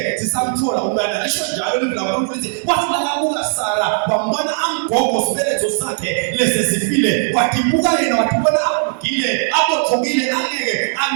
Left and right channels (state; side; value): silent; left; 68 dB below the other